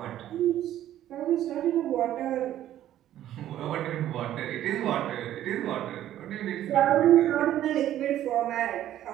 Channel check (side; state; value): left; quieter; 12.3 dB